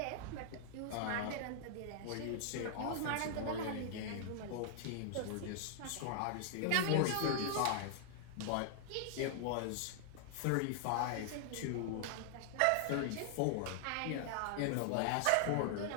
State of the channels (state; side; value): different; both; correlation -0.01